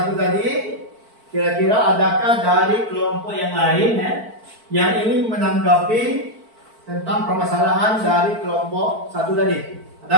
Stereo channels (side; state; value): left; late; 4.5 ms